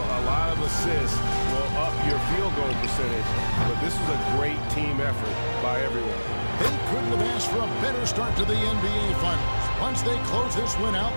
lot of assists will up your field goal percentage, but this was a great team effort by everyone. They couldn't have asked for a better start to the NBA Finals. Once they close this win out,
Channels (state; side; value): inverted; both; correlation -1.00